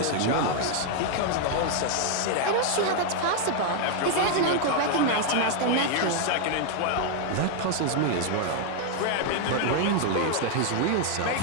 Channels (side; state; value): both; different; correlation 0.00